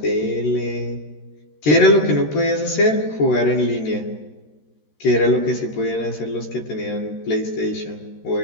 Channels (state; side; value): late; right; 13 ms